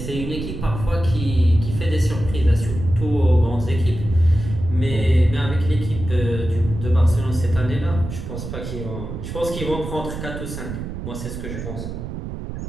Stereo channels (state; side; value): noise; right; rumble, 7 dB below the sound